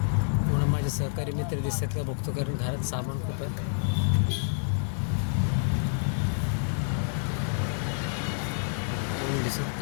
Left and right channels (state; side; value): silent; right; digital silence